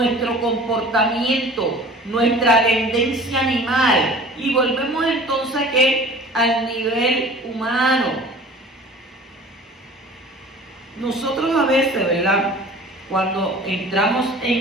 comportamiento, nuestra tendencia animal, y volvemos entonces ¿qué? Al nivel humano. Nosotros a veces, ¿verdad? Cuando entramos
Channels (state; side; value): normal; both; correlation 0.44